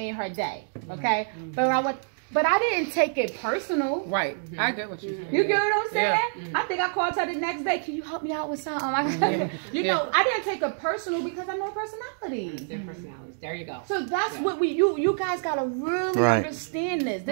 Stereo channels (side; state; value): left; silent; digital silence